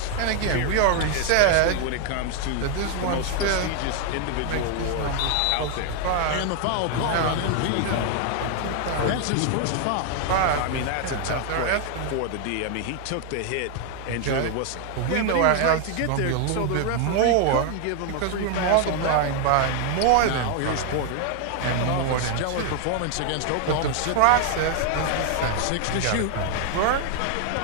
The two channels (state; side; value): different; both; correlation 0.00